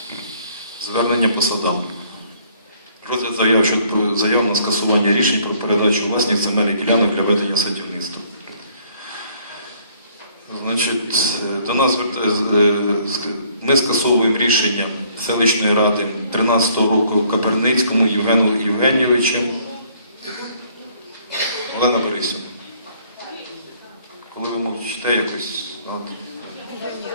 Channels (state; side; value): inverted; both; correlation -0.62